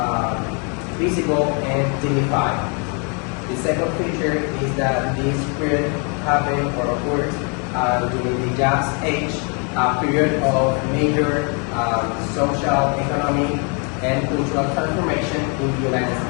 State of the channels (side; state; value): right; quieter; 36.0 dB